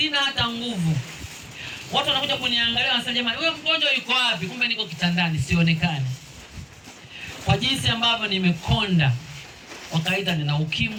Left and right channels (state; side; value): identical; both; correlation 1.00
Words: hata nguvu. Watu wanakuja kuniangalia, wanasema, "Jamani, wewe mgonjwa yuko wapi?" Kumbe niko kitandani, sionekani. Kwa jinsi ambavyo nimekonda. Wakaita nina